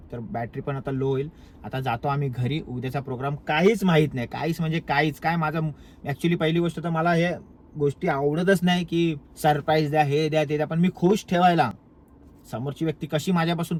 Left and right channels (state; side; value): identical; both; correlation 1.00